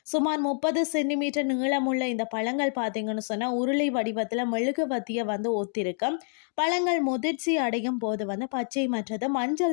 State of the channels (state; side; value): silent; right; digital silence